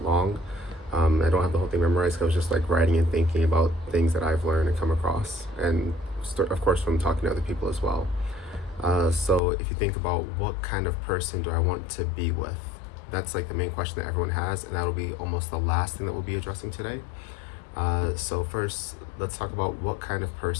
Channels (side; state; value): right; drops out; at 9.4 s